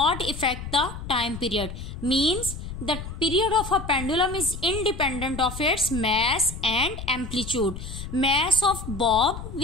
affect the time period. Means the period of a pendulum is independent of its mass and amplitude. Mass of bob,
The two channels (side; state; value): left; noise; rumble, 9 dB below the sound